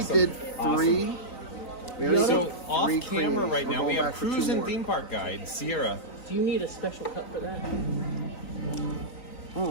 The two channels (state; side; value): late; right; 3.9 ms